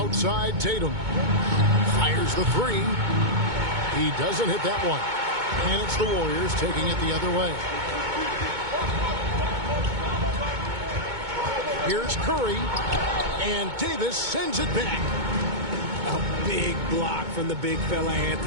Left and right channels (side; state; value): left; late; 2.2 ms